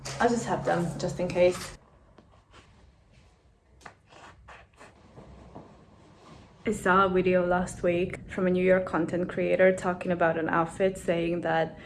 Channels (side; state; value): both; identical; correlation 1.00